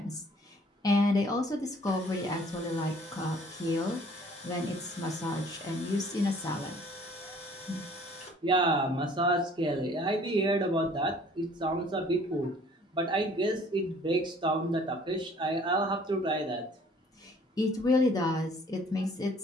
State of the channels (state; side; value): normal; both; correlation 0.55